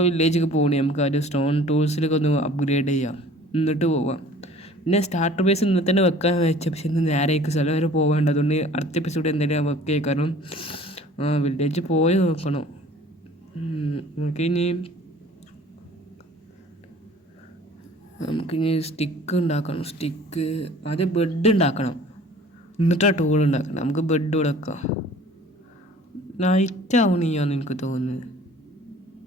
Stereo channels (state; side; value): normal; both; correlation 0.49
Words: വില്ലേജൊക്കെ പോകണേ നമുക്ക് ആദ്യം സ്റ്റോൺ ടൂൾസിലൊക്കെ ഒന്ന് അപ്ഗ്രേഡ് ചെയ്യാം, എന്നിട്ട് പോവാം. പിന്നെ സ്റ്റാർട്ടർ ബേസ് ഇന്ന് തന്നെ വെക്കാൻ വെച്ച, പക്ഷെ ഇന്ന് നേരേക്ക് സ്ഥലം വരെ പോകേണ്ട. അതുകൊണ്ട് അടുത്ത എപ്പിസോഡ് എന്തെങ്കിലും വെക്കേ. കാരണം വില്ലേജ് പോയി നോക്കണം. നമുക്കിനി സ്റ്റിക്ക് ഉണ്ടാക്കണം. ആദ്യം ബെഡ് ഉണ്ടാക്കണം, എന്നിട്ടാ ടൂൾ ഉണ്ടാക്കണം. നമുക്ക് ബെഡ് ഇവിടെ വെക്കാം. നൈറ്റ് ആവണിയാന്ന് എനിക്ക് തോന്നുന്നത്.